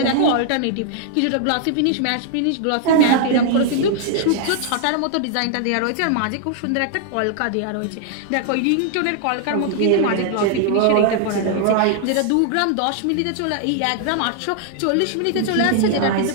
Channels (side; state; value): both; different; correlation -0.01